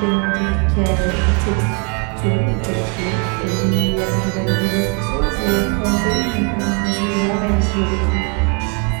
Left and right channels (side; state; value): left; quieter; 34.0 dB